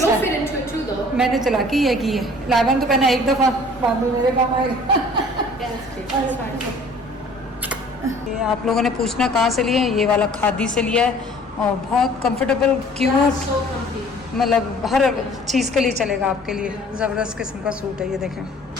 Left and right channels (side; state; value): both; normal; correlation 0.52